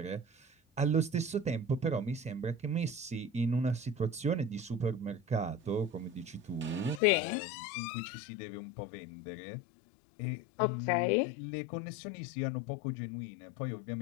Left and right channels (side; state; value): right; drops out; at 7.0 s